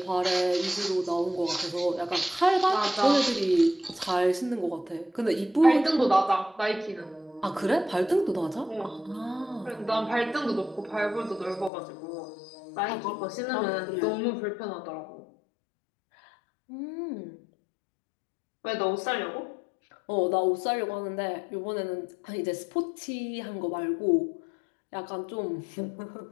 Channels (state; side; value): drops out; right; at 11.7 s